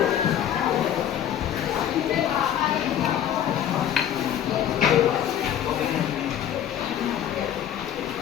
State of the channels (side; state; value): right; quieter; 10.1 dB